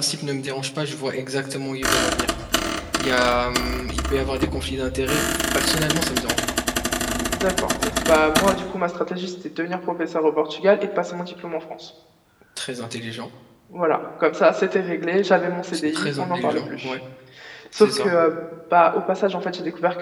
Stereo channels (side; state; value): both; identical; correlation 1.00